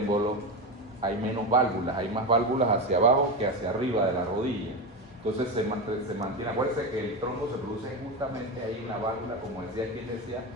hay menos válvulas, hay más válvulas hacia abajo que hacia arriba de la rodilla. Entonces se mantiene. Acuérdense que el trombo se produce justamente ahí en la válvula, como decía quien decía,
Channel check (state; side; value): normal; both; correlation 0.17